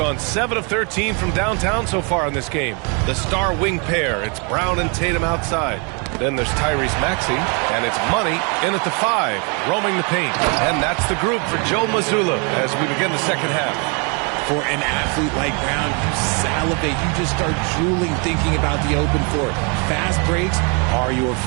7 of 13 from downtown so far in this game. The star wing pair, it's Brown and Tatum outside. Then there's Tyrese Maxey, and it's Money in at the 5, roaming the paint. And that's the group for Joe Mazzulla as we begin the second half. For an athlete like Brown, you salivate. You just start drooling thinking about the open floor. Fast breaks are your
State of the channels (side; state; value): left; quieter; 34.9 dB